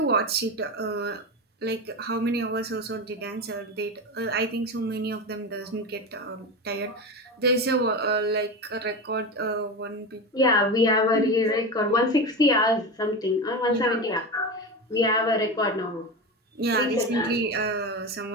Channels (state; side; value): normal; both; correlation 0.22